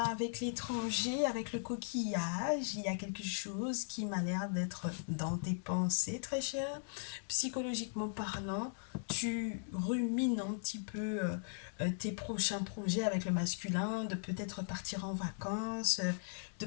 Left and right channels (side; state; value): right; silent; digital silence